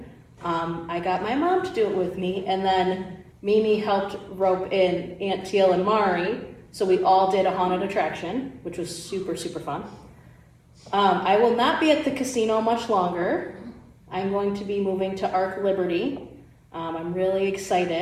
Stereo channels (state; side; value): identical; both; correlation 1.00